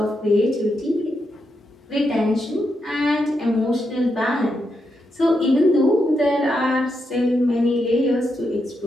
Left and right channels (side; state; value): both; normal; correlation 0.83